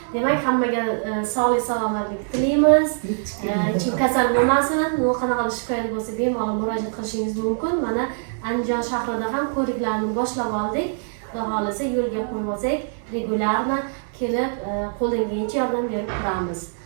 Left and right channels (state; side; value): silent; left; 63 dB below the other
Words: Demak, hammaga sog'lik salomatlik tilaymiz. Hech kim kasal bo'lmasin. Qanaqa shikoyat bo'lsa bemalol murojaat qilishingiz mumkin. Mana Andijon shahrida ham ko'riklarni boshlab oldik. Xudo xolasa yo'lga qo'yib olsak, regularno kelib qo'ldan kelgancha yordam berib turamiz.